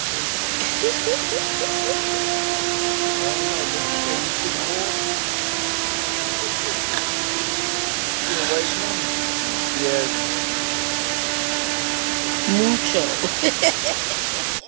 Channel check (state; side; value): silent; left; 62 dB below the other